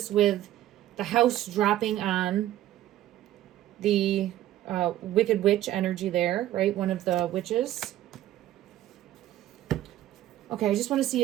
with the house dropping on the Wicked Witch energy there, right? One of the witches. Okay, I just want to see,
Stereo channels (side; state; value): left; quieter; 13.5 dB